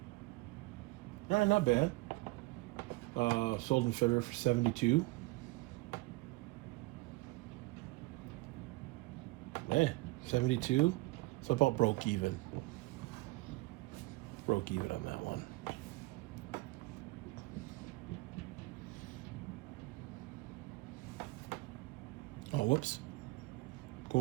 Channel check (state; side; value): quieter; left; 22.3 dB